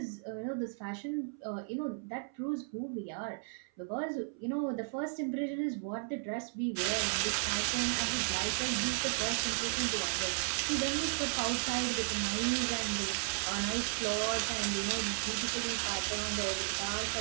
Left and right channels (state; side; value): silent; left; 55 dB below the other